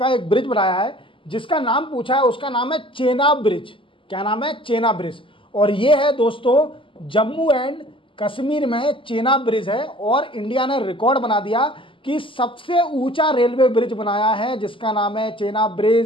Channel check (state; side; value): late; right; 0.25 ms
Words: एक ब्रिज बनाया है जिसका नाम पूछा है, उसका नाम है चेनाब ब्रिज। क्या नाम है? चेनाब ब्रिज। और ये है दोस्तों जम्मू एंड कश्मीर में चेनाब ब्रिज है। और इंडिया ने रिकॉर्ड बना दिया कि सबसे ऊंचा रेलवे ब्रिज बनाया है जिसका नाम है चेनाब